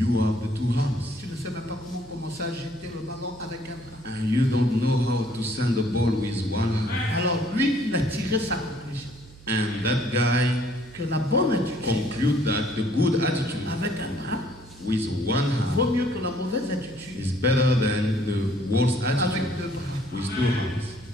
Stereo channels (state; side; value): noise; right; hum, 22 dB below the sound